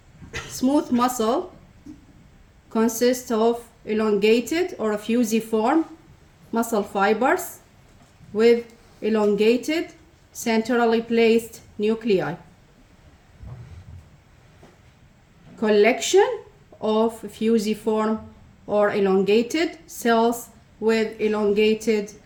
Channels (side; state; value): both; identical; correlation 1.00